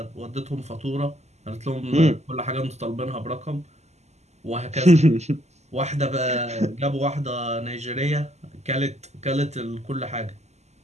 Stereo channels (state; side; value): late; left; 0.33 ms